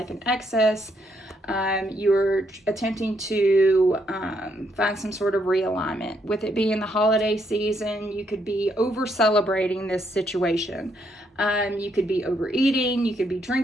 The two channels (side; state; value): both; normal; correlation 0.74